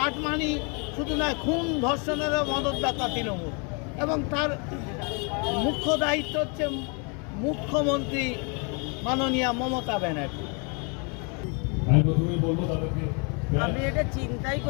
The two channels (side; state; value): right; quieter; 34.7 dB